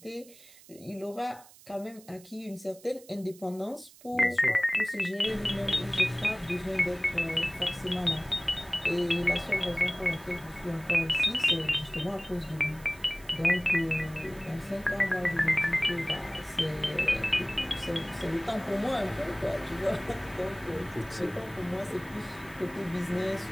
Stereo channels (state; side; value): noise; right; hiss, 22 dB below the sound